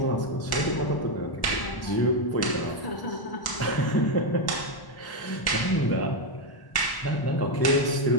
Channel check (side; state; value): right; late; 1.0 ms